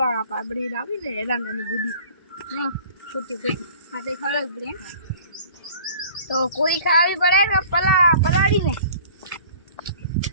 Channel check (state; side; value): inverted; both; correlation -0.47